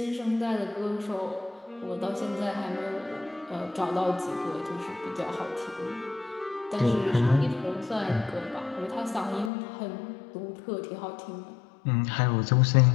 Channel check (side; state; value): right; drops out; at 9.5 s